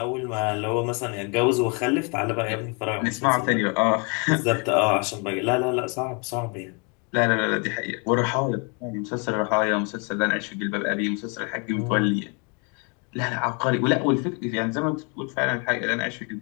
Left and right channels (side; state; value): right; quieter; 34.1 dB